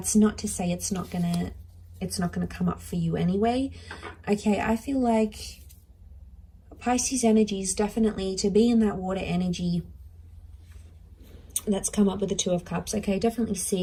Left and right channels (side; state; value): both; identical; correlation 1.00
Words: not to say it's not gonna come up for you anyway. Okay, I feel like Pisces energy is definitely to be in that water energy that's come up with the Two of Cups. Okay, definitely